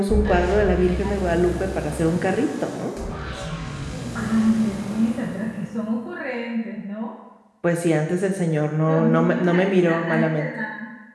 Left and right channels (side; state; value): both; identical; correlation 1.00